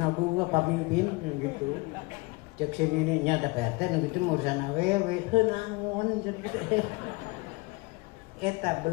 gua pamimpin gitu. Cek sini nih nya ada PRT nu kitu urusan awewe heuh naon cenah. Eta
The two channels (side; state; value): right; quieter; 25.4 dB